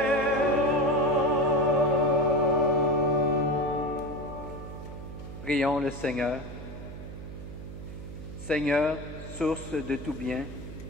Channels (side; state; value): right; noise; hum, 11 dB below the sound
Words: Prions le Seigneur. Seigneur, source de tout bien,